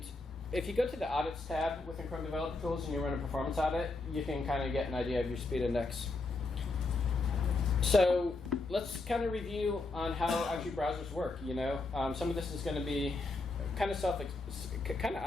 if you go to the Audits tab within Chrome Developer Tools and you run a performance audit, you can kind of get an idea of your speed index. So let's kind of review on how actually browsers work. You know, some of this is going to be kind of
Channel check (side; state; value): right; quieter; 3.3 dB